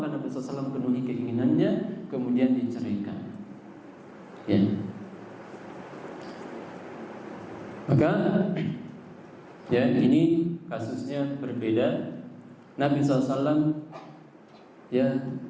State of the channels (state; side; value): identical; both; correlation 1.00